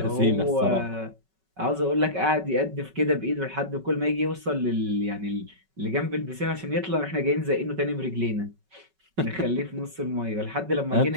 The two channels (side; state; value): left; late; 5.3 ms